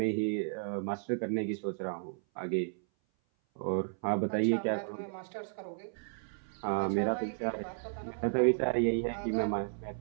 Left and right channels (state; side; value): silent; left; 55 dB below the other